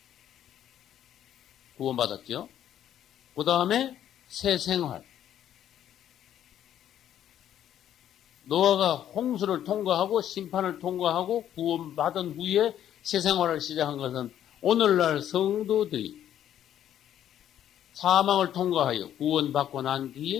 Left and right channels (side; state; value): right; quieter; 10.8 dB